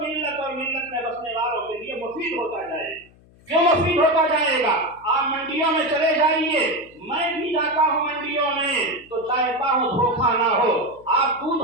और मिल्लत में बसने वालों के लिए मुफीद होता जाएगा। क्यों मुफीद होता जाएगा? आप मंडियों में चले जाइए, मैं भी जाता हूँ मंडियों में, तो चाहता हूँ धोखा ना हो। आप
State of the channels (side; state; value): left; noise; hum, 27 dB below the sound